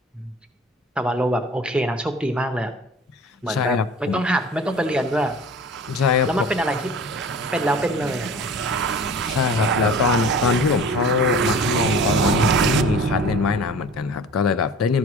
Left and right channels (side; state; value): both; normal; correlation 0.41